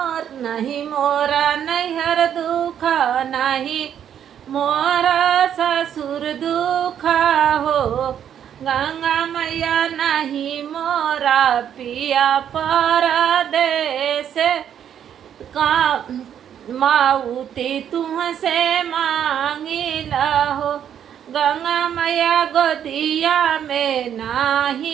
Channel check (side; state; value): left; quieter; 9.3 dB